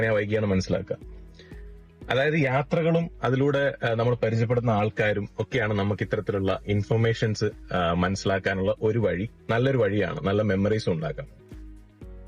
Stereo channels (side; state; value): both; identical; correlation 1.00